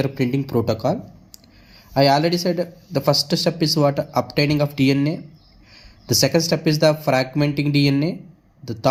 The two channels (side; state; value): both; identical; correlation 1.00